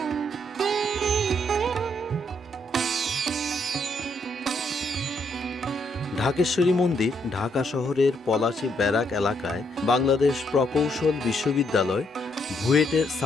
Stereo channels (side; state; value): both; normal; correlation 0.74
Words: ঢাকেশ্বরী মন্দির ঢাকা শহরের পলাশী ব্যারাক এলাকায় বাংলাদেশ প্রকৌশল বিশ্ববিদ্যালয় বুয়েটের